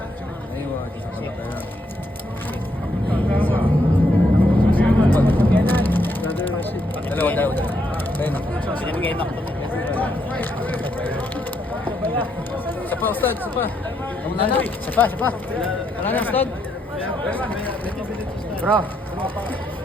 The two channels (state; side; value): normal; both; correlation 0.76